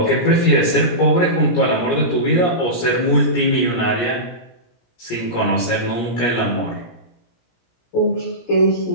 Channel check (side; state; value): right; late; 17 ms